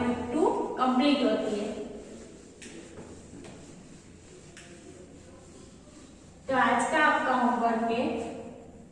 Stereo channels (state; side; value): identical; both; correlation 1.00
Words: कंप्लीट होती है। तो आज का आपका होमवर्क है,